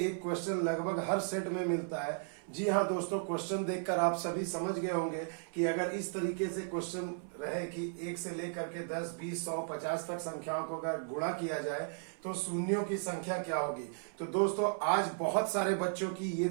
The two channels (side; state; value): left; silent; 54 dB below the other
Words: क्वेश्चन लगभग हर सेट में मिलता है। जी हाँ दोस्तों, क्वेश्चन देखकर आप सभी समझ गए होंगे कि अगर इस तरीके से क्वेश्चन रहे कि 1 से लेकर के 10, 20, 100, 50 तक संख्याओं को अगर गुणा किया जाए तो शून्यों की संख्या क्या होगी। तो दोस्तों, आज बहुत सारे बच्चों की ये